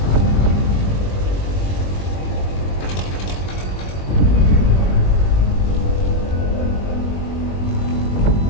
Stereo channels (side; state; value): right; late; 21 ms